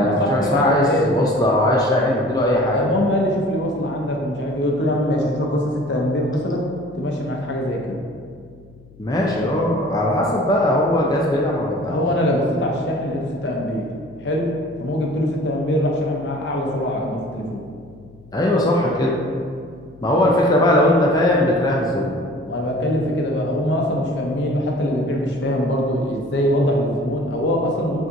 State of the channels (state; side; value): noise; left; hum, 24 dB below the sound